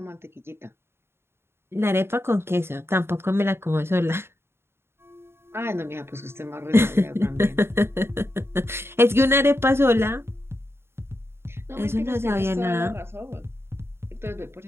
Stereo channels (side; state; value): left; late; 0.12 ms